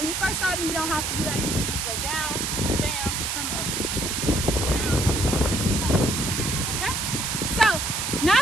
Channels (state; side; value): noise; right; hiss, 1 dB below the sound